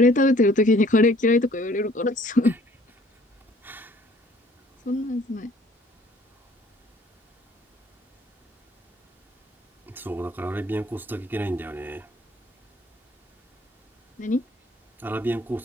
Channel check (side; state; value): both; normal; correlation 0.57